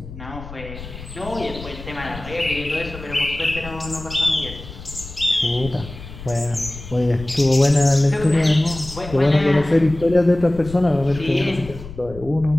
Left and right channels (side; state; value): left; noise; rumble, 14 dB below the sound